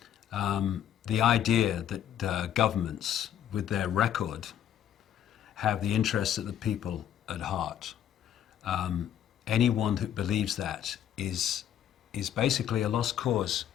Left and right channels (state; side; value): quieter; right; 10.3 dB